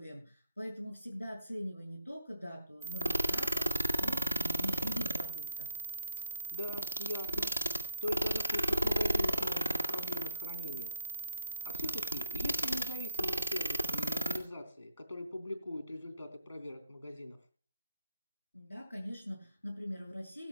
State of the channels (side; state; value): both; inverted; correlation -0.72